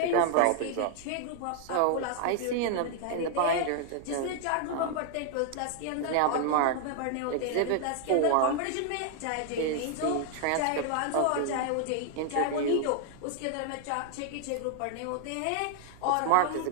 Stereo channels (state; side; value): different; both; correlation 0.00